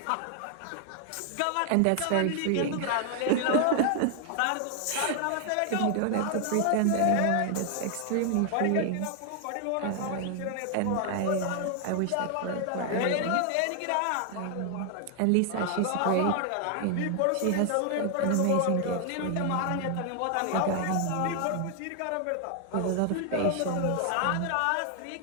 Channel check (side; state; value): both; different; correlation 0.00